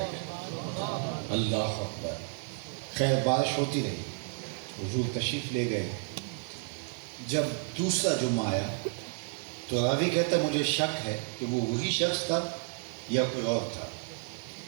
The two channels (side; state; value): left; silent; 57 dB below the other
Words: اللہ اکبر! خیر بارش ہوتی رہی، حضور تشریف لے گئے۔ جب دوسرا جمعہ آیا تو راوی کہتا ہے مجھے شک ہے کہ وہ وہی شخص تھا یا کوئی اور تھا۔